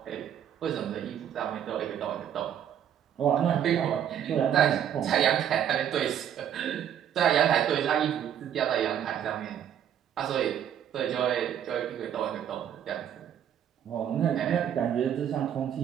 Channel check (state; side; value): quieter; left; 9.6 dB